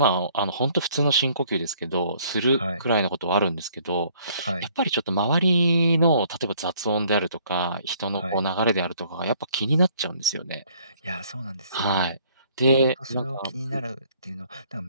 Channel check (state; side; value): inverted; both; correlation -0.61